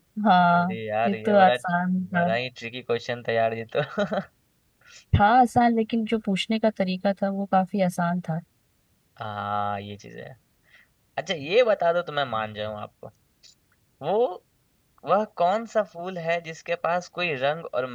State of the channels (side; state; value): both; identical; correlation 1.00